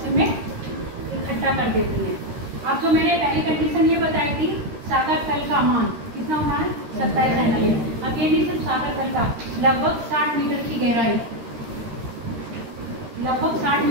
में इकट्ठा कर देती हैं। अब जो मैंने पहली कंडीशन ये बताई थी, सागर तल का मान कितना होना है, 27 सेंटीमीटर। अब ये नहीं सिर्फ सागर तल का, लगभग 60 मीटर की गहराई, लगभग 60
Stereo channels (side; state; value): left; late; 13 ms